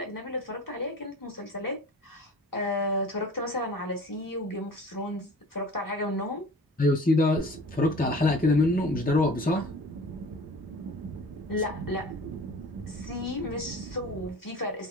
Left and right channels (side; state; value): both; normal; correlation 0.42